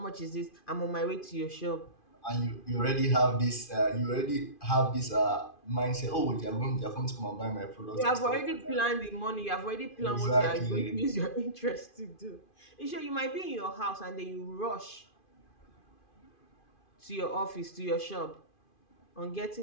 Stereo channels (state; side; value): late; right; 2.5 ms